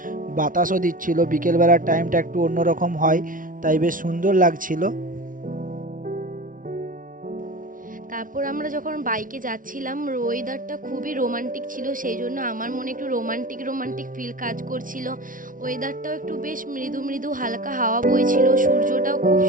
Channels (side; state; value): left; late; 0.39 ms